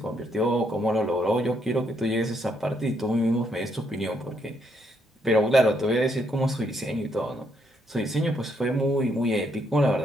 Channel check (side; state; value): both; normal; correlation 0.74